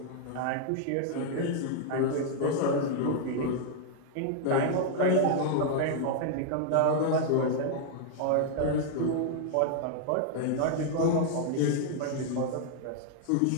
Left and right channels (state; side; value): different; both; correlation 0.00